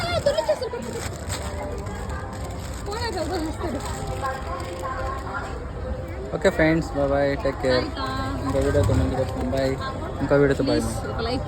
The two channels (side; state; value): both; identical; correlation 1.00